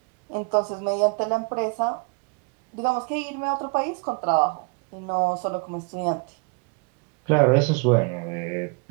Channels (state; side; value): quieter; left; 33.5 dB